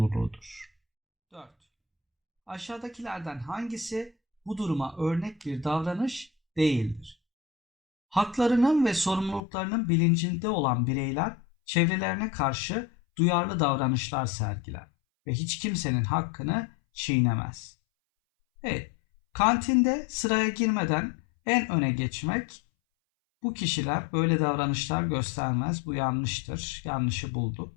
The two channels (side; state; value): right; drops out; at 9.4 s